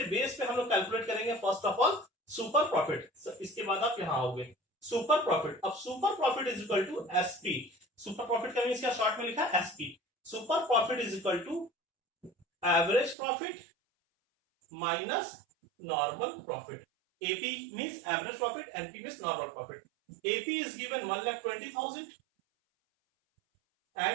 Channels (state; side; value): drops out; left; at 13.2 s